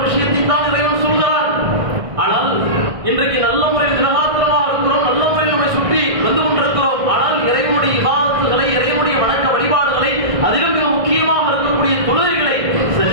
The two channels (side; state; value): left; late; 1.6 ms